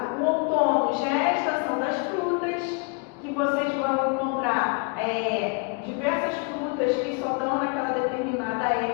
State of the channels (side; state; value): right; quieter; 33.6 dB